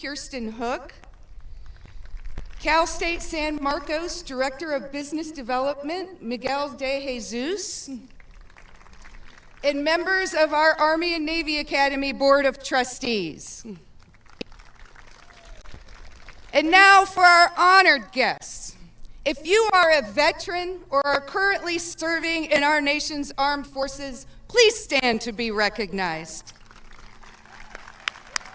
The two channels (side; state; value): both; identical; correlation 1.00